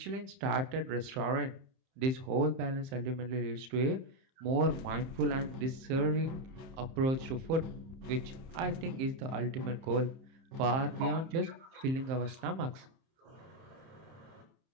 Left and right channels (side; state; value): left; late; 30 ms